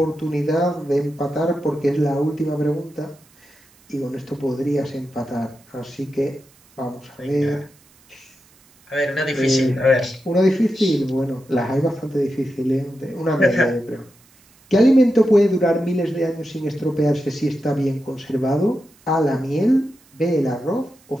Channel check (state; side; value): noise; right; hiss, 30 dB below the sound